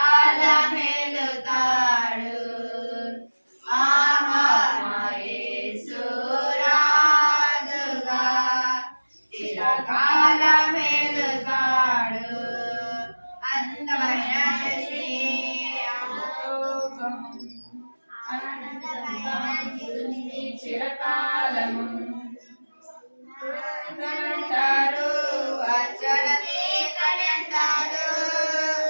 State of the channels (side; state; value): both; inverted; correlation -1.00